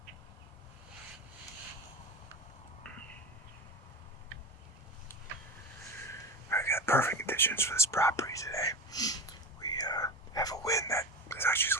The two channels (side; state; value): both; normal; correlation 0.26